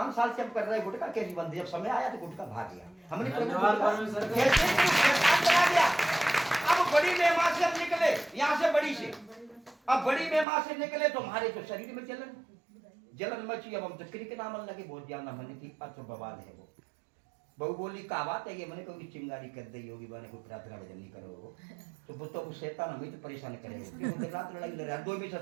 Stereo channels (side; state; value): left; drops out; at 10.5 s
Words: साल से हम कर रहे गुटखा कैसी बंदी, जब समय आया तो गुटखा भाग गया। हमने गया। अब बड़ी मेहमान से हम निकले, यहाँ से बड़ी से, अब बड़ी मेहमान से निकले तो हमारे तो शरीर में जलन मची। अब हम तो क्रिक नाम लगे बहुत ज्यादा, मैंने की अच्छा बवाल है वो। बहू बोली का बात है ये, मैंने कोई चिंगारी कर दी होगी, मैंने कोई प्रार्थना भजन नहीं करो तो वो तो शैतान हमें तो परेशान करेगा। रात लड़ाई लड़ रहा है, 2 भी